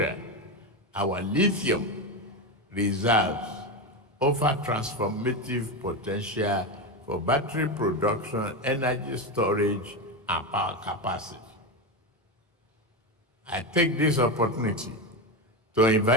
our lithium reserves offer transformative potential for battery production, energy storage, and power capacity. I take this opportunity to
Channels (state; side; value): normal; both; correlation 0.15